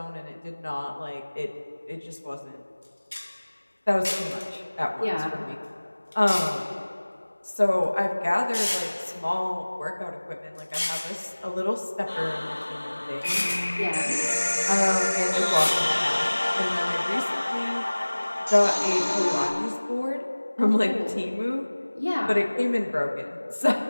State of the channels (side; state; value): both; inverted; correlation -1.00